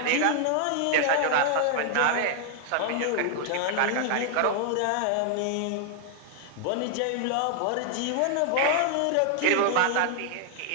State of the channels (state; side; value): different; both; correlation 0.00